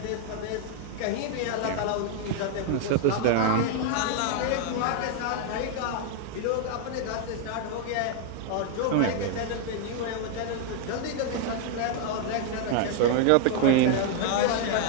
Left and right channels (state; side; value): different; both; correlation 0.00